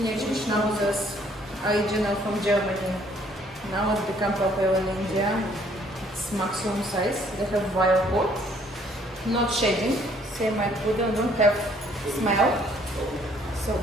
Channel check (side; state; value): both; normal; correlation 0.63